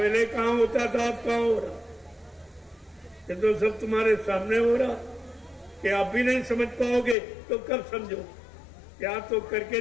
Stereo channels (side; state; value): right; drops out; at 7.2 s